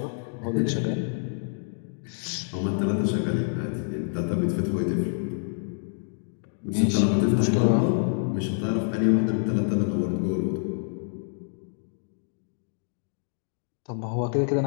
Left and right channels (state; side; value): silent; right; 60 dB below the other